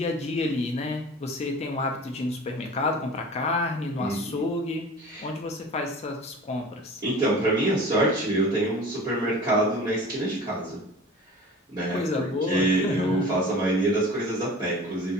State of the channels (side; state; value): both; normal; correlation 0.40